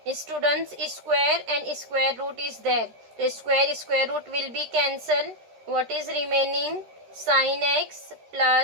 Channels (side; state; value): left; late; 13 ms